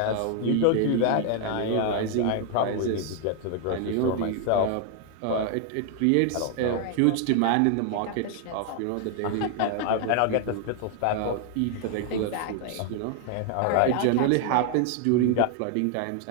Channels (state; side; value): different; both; correlation 0.00